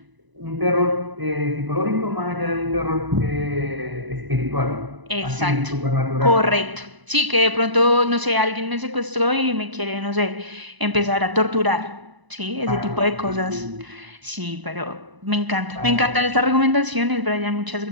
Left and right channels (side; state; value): left; late; 1.0 ms